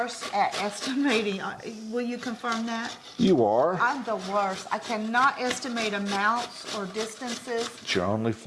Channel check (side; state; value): both; identical; correlation 1.00